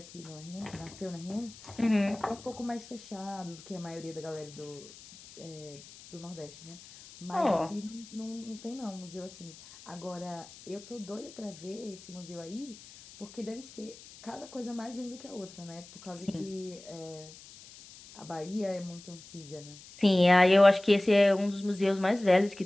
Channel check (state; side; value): noise; left; hiss, 19 dB below the sound